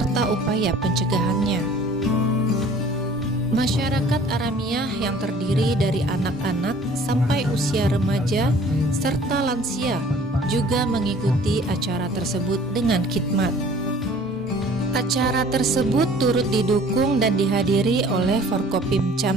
upaya pencegahannya. Masyarakat Aramiah yang terdiri dari anak-anak sampai usia remaja serta lansia juga mengikuti acara tersebut dengan khidmat. Acara tersebut turut didukung dan dihadiri oleh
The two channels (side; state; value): both; normal; correlation 0.51